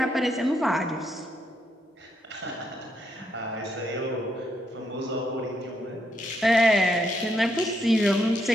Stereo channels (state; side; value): normal; both; correlation 0.77